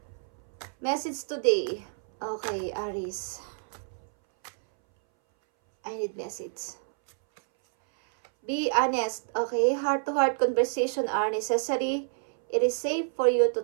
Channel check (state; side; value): silent; left; 59 dB below the other